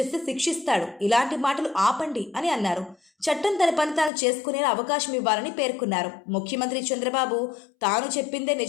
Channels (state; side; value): drops out; right; at 4.1 s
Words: శిక్షిస్తాడు, ఇలాంటి మాటలు ఆపండి అని అన్నారు. చట్టం తన పని తాను చేసుకునేలా అవకాశం ఇవ్వాలని పేర్కొన్నారు. ముఖ్యమంత్రి చంద్రబాబు తాను చెప్పిందే